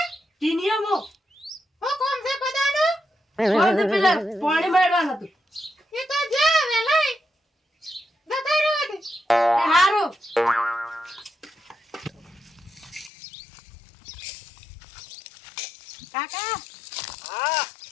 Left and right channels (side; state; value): right; drops out; at 13.1 s